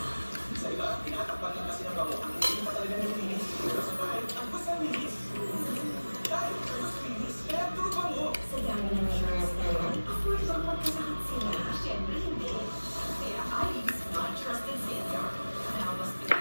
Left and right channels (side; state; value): both; inverted; correlation -1.00